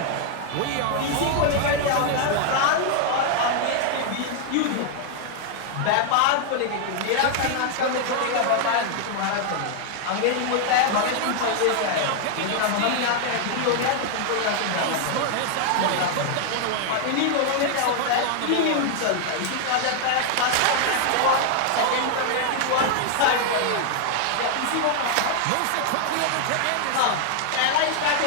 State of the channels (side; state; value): both; different; correlation 0.00